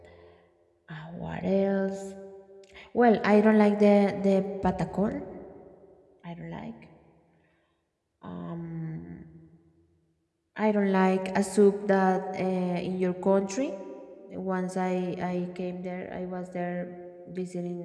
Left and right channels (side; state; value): both; identical; correlation 1.00